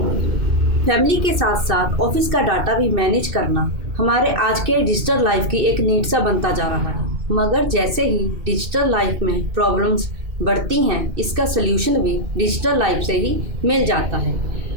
फैमिली के साथ साथ ऑफिस का डाटा भी मैनेज करना हमारे आज के डिजिटल लाइफ की एक नीड सा बनता जा रहा है। मगर जैसे ही डिजिटल लाइफ में प्रॉब्लम्स बढ़ती हैं, इसका सल्यूशन भी डिजिटल लाइफ से ही मिल जाता है।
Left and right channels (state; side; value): late; left; 2.6 ms